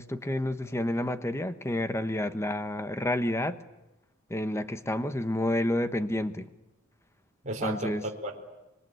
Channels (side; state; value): both; normal; correlation 0.76